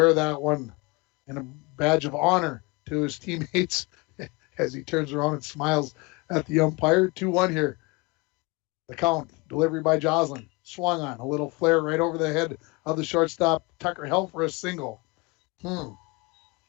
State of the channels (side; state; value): right; quieter; 26.5 dB